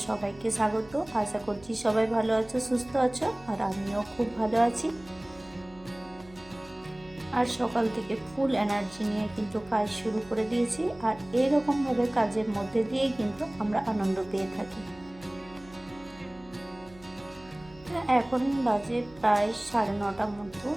সবাইকে স্বাগত। আশা করছি সবাই ভালো আছো, সুস্থ আছো, আর আমিও খুব ভালো আছি। আর সকাল থেকে ফুল এনার্জি নিয়ে কিন্তু কাজ শুরু করে দিয়েছি, আর এরকমভাবে কাজের মধ্যে দিয়েই কিন্তু আমরা আনন্দ পেয়ে থাকি। এখন বাজে প্রায় 9:30 মতো।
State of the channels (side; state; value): right; noise; hum, 23 dB below the sound